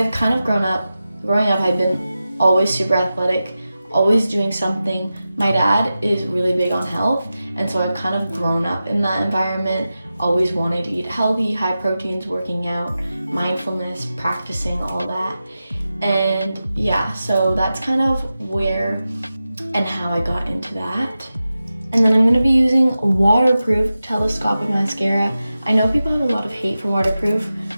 kind of growing up, I've been always super athletic, always doing something. My dad is really big on health, and so I've kind of grown up in that environment, always wanting to eat healthy, high proteins, working out, mindfulness, practicing all that. And yeah, so that's kind of where and how I got into that. And then I'm going to be using waterproof telescopic mascara. I know people have a lot of hate for waterproof.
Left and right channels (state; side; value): inverted; both; correlation -0.93